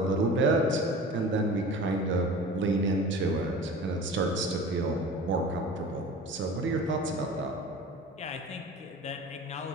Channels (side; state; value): both; normal; correlation 0.38